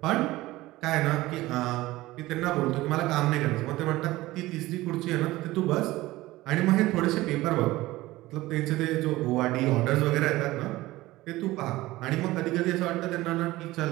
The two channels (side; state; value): left; quieter; 18.1 dB